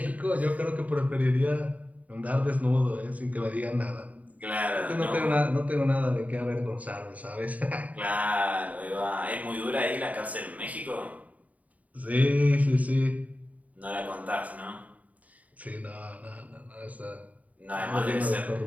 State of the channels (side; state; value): left; late; 0.071 ms